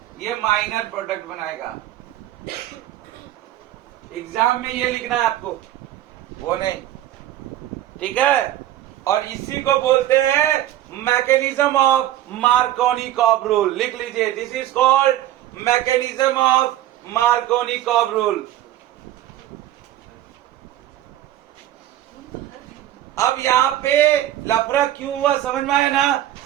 ये माइनर प्रोडक्ट बनाएगा। एग्जाम में ये लिखना है आपको, वो नहीं, ठीक है। और इसी को बोलते हैं मैकेनिज्म ऑफ मार्कोनी-कॉब रूल। लिख लीजिए, this is called mechanism of Markovnikov-cob rule. अब यहाँ पे लफड़ा क्यों हुआ समझ में आया ना?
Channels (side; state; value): left; quieter; 13.3 dB